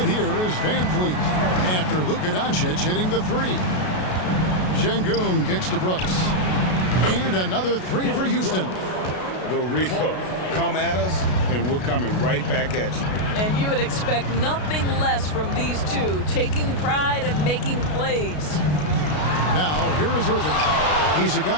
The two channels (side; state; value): right; late; 33 ms